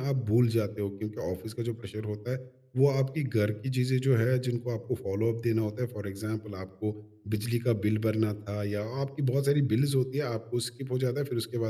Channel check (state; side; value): identical; both; correlation 1.00